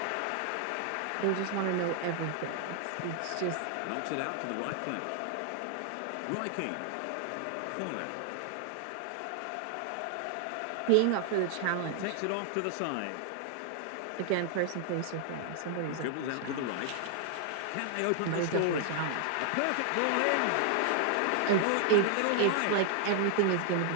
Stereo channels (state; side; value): different; both; correlation 0.00